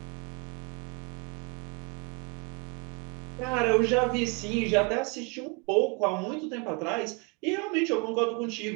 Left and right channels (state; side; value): quieter; left; 31.9 dB